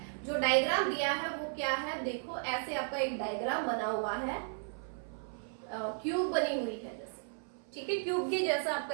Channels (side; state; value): left; silent; 54 dB below the other